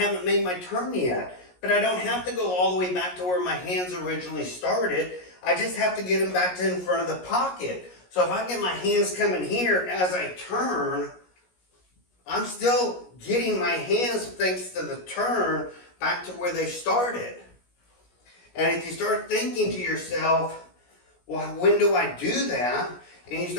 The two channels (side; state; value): right; late; 17 ms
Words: made my turn yet. But I don't have to go all the way back to where my hands originally started. I just have to get them back to in front of the pocket. So if I get my hands coming here as I turn, I'm still getting my hands, thanks to the turn, back to where they started. And if you start thinking to yourself, well, when do I do that? And you